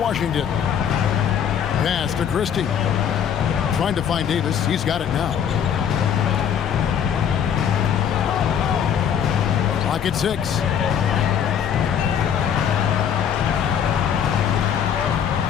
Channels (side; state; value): right; quieter; 8.4 dB